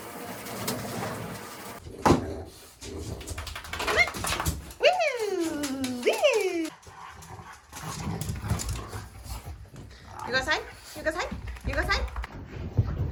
You go outside? You go outside? You go outside?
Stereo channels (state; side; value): identical; both; correlation 1.00